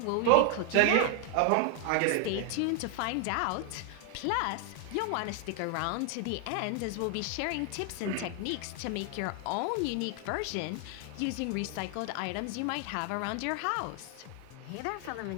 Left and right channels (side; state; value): both; different; correlation 0.00